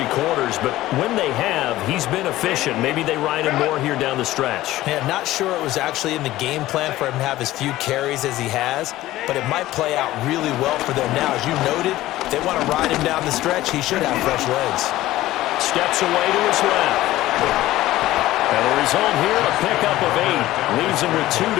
quarters, but when they have, he's been efficient. Maybe they ride him more here down the stretch. Yeah, not sure it was actually in the game plan for him to have as few carries as he has, but it might play out really well for them now. As you noted, if they want to ride him down the stretch, he should have fresh legs. Steps away to his left. And the result here, a pickup of 8. Leaves him with 2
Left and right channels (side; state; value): right; quieter; 15.9 dB